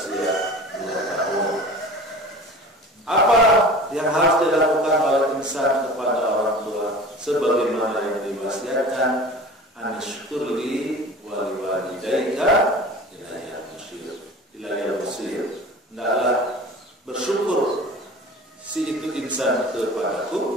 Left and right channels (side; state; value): both; normal; correlation 0.39